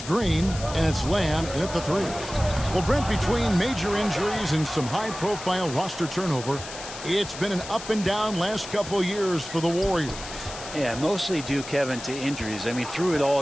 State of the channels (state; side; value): noise; left; hiss, 12 dB below the sound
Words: Green. And it's Lamb in at the 3. Well, Brent, between major injuries and some high-profile roster turnover, it's been an up and down last couple years for the Warriors. Yeah, mostly due, Kevin, to injuries. I mean, through it